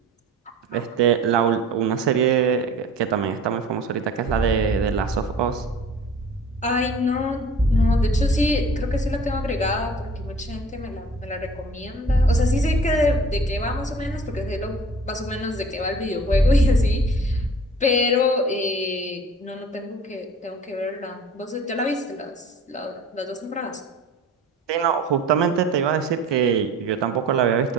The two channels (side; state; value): both; normal; correlation 0.45